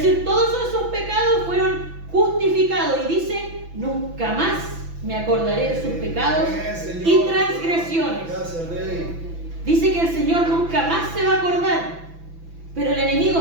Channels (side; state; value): left; late; 6.0 ms